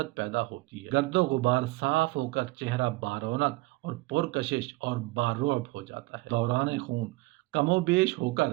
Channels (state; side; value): quieter; left; 21.7 dB